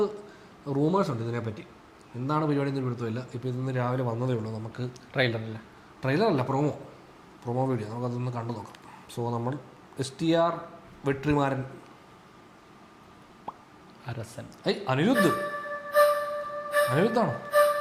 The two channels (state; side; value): identical; both; correlation 1.00